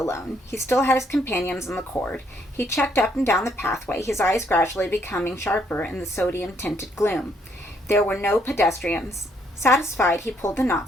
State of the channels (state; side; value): normal; both; correlation 0.70